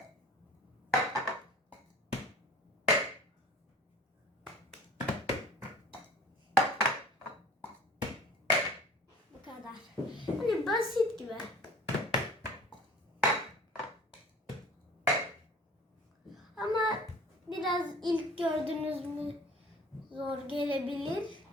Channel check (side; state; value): both; normal; correlation 0.46